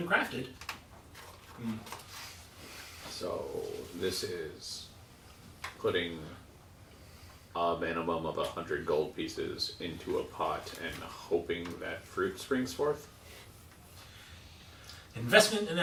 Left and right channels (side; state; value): both; identical; correlation 1.00